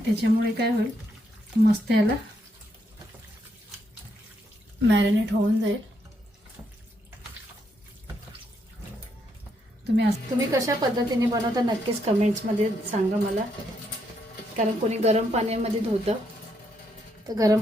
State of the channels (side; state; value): both; normal; correlation 0.77